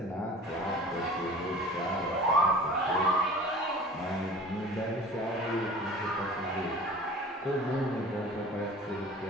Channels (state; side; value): normal; both; correlation 0.42